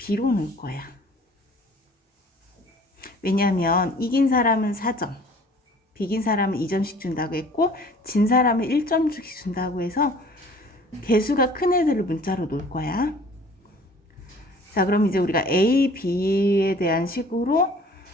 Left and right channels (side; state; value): both; normal; correlation 0.51